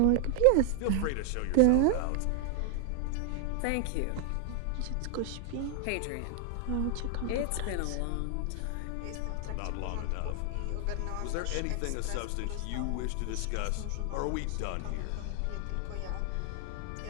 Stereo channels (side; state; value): both; different; correlation 0.00